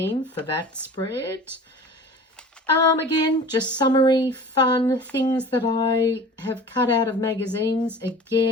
for that spread. Again, just summary, fun things that I have cut out of magazines.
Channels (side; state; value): both; normal; correlation 0.41